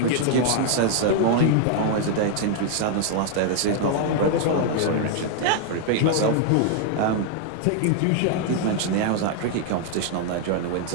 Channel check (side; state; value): both; different; correlation 0.00